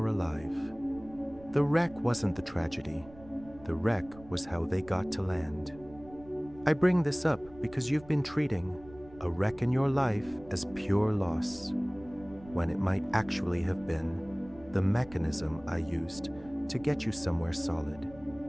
alive. The wreck wasn't the tragedy. The wreck was how they got to land. I bring this up because you've been treating a wreck in your life as pure loss, when it might actually have been the mechanism I used to get you somewhere solid.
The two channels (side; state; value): right; noise; rumble, 21 dB below the sound